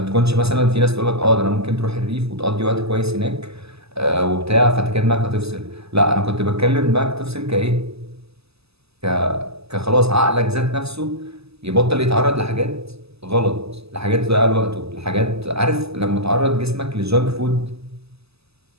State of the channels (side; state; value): left; late; 0.79 ms